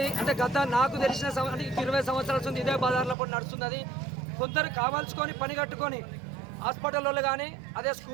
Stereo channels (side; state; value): left; drops out; at 3.2 s